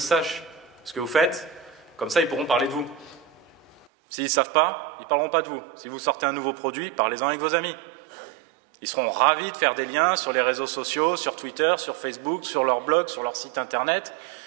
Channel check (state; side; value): drops out; left; at 3.9 s